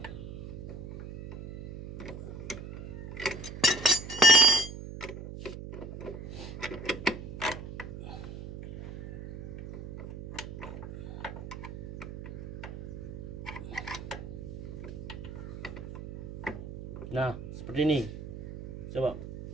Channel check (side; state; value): right; noise; hum, 10 dB below the sound